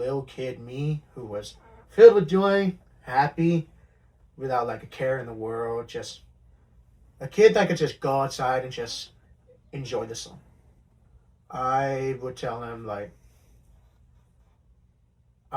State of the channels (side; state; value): both; identical; correlation 1.00